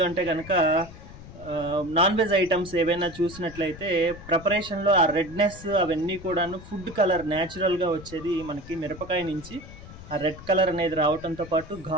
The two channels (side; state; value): left; noise; rumble, 16 dB below the sound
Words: కనుక నాన్ వెజ్ ఐటమ్స్ ఏవైనా చూసినట్లయితే ప్రిపరేషన్లో ఆ రెడ్నెస్ అవన్నీ కూడాను ఫుడ్ కలర్ న్యాచురల్గా వచ్చేది మనకి మిరపకాయ నుంచి. ఆ రెడ్ కలర్ అనేది రావడంతో పాటు